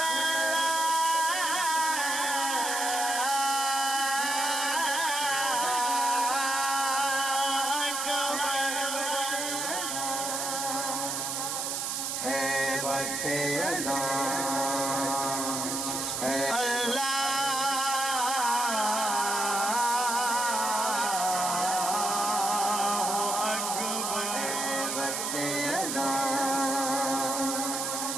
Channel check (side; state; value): right; noise; hiss, 2 dB below the sound